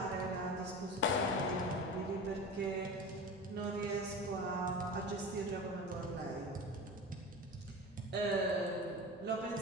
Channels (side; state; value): both; normal; correlation 0.31